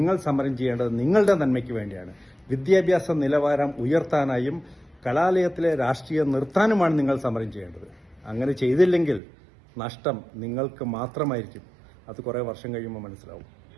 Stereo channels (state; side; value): drops out; left; at 9.2 s